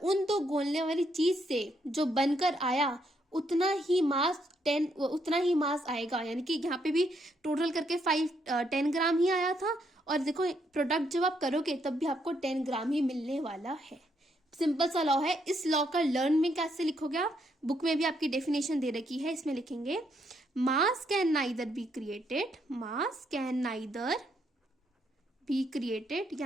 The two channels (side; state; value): both; normal; correlation 0.75